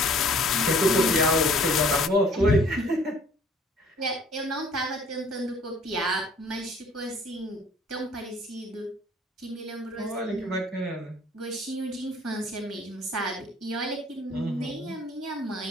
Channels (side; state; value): both; normal; correlation 0.55